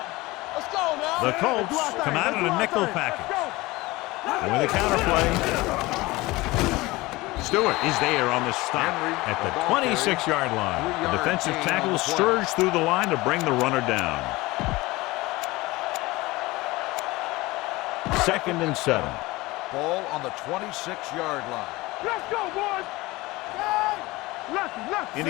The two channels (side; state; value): right; quieter; 20.8 dB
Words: Let's go now. The Colts come out in a nickel package. And with a counterplay, Stewart is there on the stop at the 26-yard line. The defensive tackle surged through the line to bring the runner down. Second and 7. Ball on the 26-yard line. Let's go, boys.